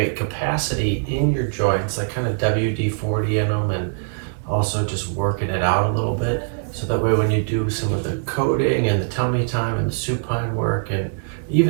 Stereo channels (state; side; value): silent; left; 64 dB below the other